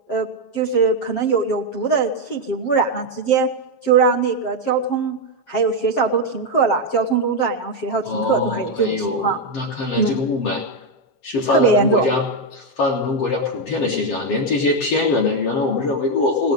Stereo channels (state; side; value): late; right; 7.5 ms